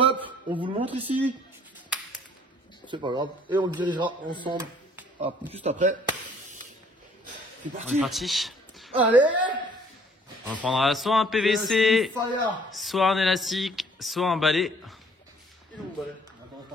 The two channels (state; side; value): normal; both; correlation 0.58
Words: On vous le montre ici. C'est pas grave. Et on le dirigera ensemble juste après. C'est On parti. est parti. Allez. On prendra soit un PVC, Fire. soit un élastique, soit un balai. Il est où mon balai? Attends,